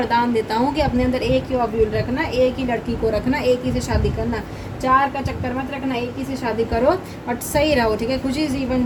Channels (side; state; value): both; identical; correlation 1.00